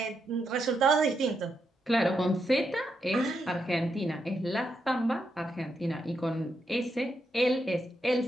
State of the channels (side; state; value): both; normal; correlation 0.82